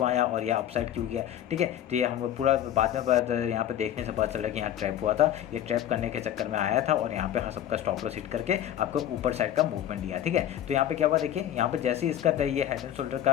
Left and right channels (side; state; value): right; quieter; 11.2 dB